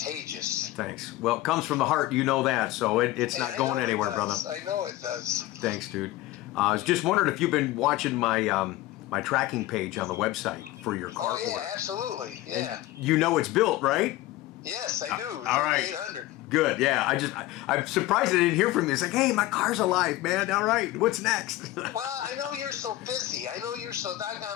Thanks. Well, it comes from the heart. You know that, so it's not going anywhere, brother. I know it does. Thanks, dude. I was just wondering if you've been watching my my tracking page on the website for your car. Oh yeah, absolutely. Yeah. And you know it's built, right? Yes, I do. All right. 3800. Good. Yeah. I'm surprised I didn't hear from you. It's like, hey, my car's alive, man. All right. What's next? Well, I know you're so busy. I know you're so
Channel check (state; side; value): quieter; right; 16.4 dB